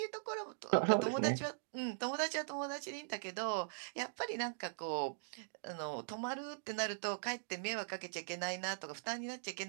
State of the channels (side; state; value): left; silent; digital silence